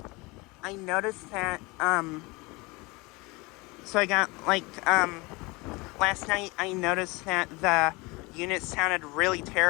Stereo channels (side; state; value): right; quieter; 24.8 dB